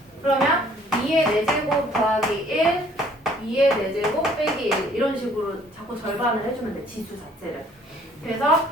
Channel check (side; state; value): both; normal; correlation 0.59